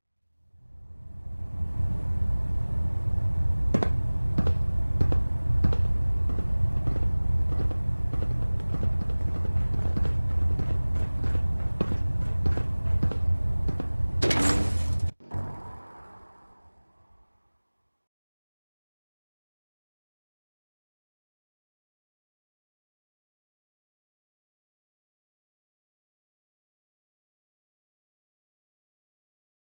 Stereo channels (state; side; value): inverted; both; correlation -1.00